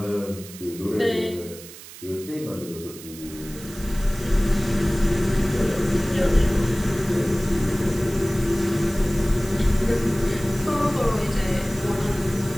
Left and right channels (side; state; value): right; noise; hiss, 16 dB below the sound